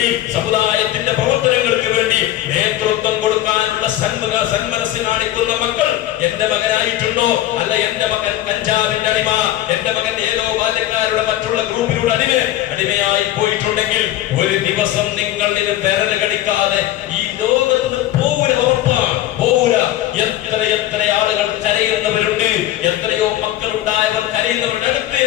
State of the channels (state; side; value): quieter; right; 13.8 dB